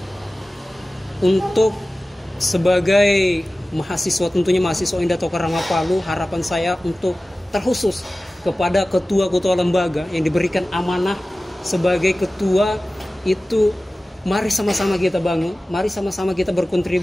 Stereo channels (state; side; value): normal; both; correlation 0.96